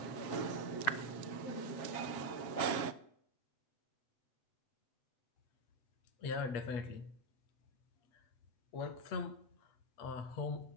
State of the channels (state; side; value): late; right; 7.4 ms